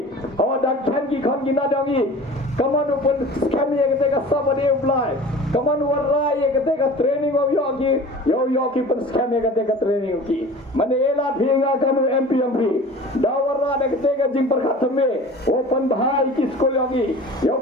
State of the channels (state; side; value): normal; both; correlation 0.40